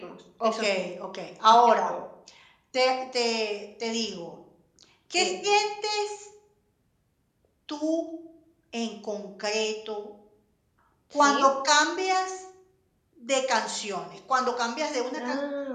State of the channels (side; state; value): both; identical; correlation 1.00